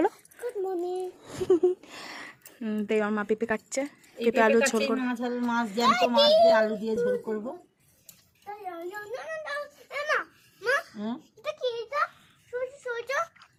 Good morning. তো আমার মা পেঁপে কাটছে, পেঁপে আলু ঝোল করবো। মাছ জ্যান্ত মাছ দিয়ে আলু দিয়ে ঝোল করবো।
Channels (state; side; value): identical; both; correlation 1.00